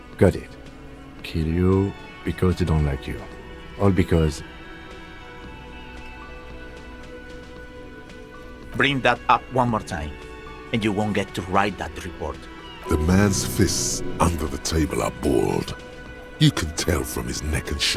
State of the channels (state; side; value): identical; both; correlation 1.00